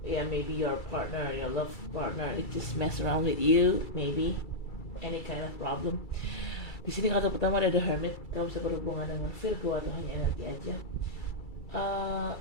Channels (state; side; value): late; right; 2.3 ms